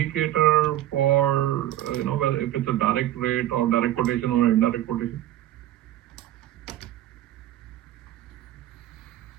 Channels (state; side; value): quieter; left; 13.5 dB